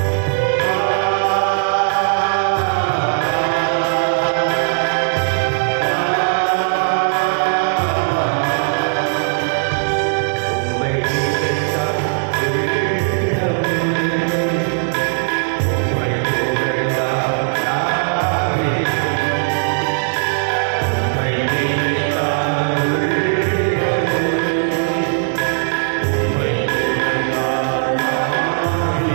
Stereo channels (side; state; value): left; silent; digital silence